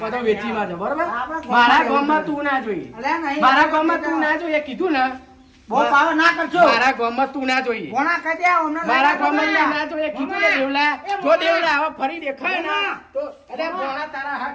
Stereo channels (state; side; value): identical; both; correlation 1.00